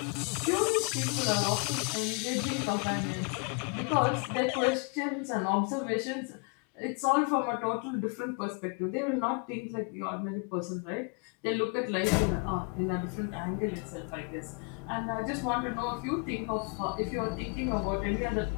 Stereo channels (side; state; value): right; quieter; 34.1 dB